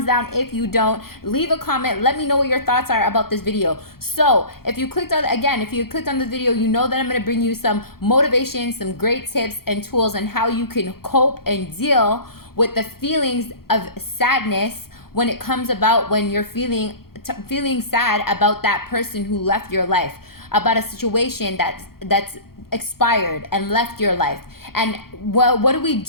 down. If you don't, leave a comment, let me know what your thoughts are about this video. So if you clicked on this video, you know that I'm going to bring you some motivation, some great tips and tools on how you can cope and deal with the feelings of sadness when it comes about when you're feeling sad about that person who left your life, about a situation that's expired and left your life. And what do we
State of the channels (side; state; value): right; late; 0.94 ms